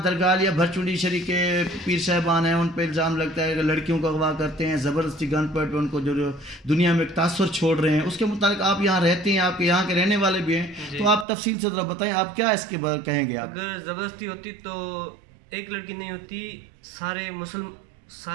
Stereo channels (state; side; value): drops out; left; at 11.2 s